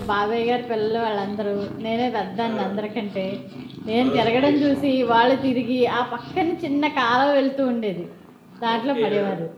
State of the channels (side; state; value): both; identical; correlation 1.00